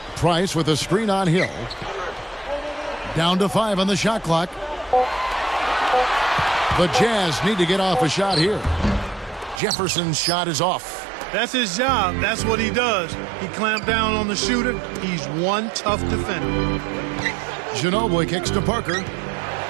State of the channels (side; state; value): left; drops out; at 9.6 s